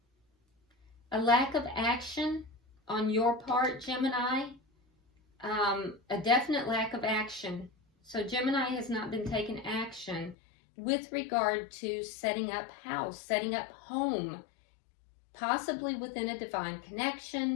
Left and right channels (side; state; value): right; drops out; at 10.4 s